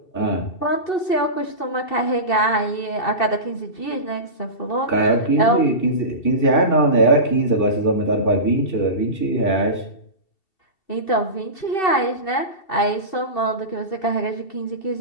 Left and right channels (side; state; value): right; late; 2.7 ms